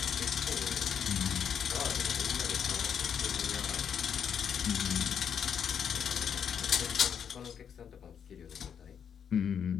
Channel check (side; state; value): right; quieter; 7.8 dB